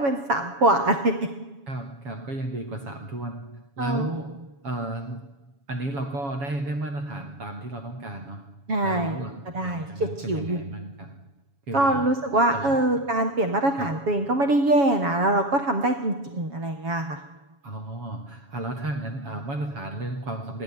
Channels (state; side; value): late; left; 7.2 ms